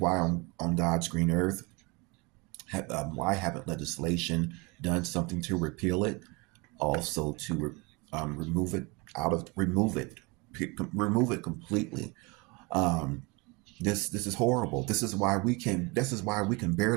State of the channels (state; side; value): quieter; left; 27.6 dB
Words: God's green earth, why haven't legislation done something to repeal it? Also to remove it completely. Um, this is horrible. This is why we can